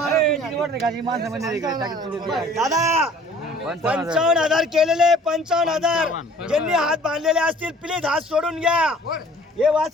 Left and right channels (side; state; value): both; normal; correlation 0.52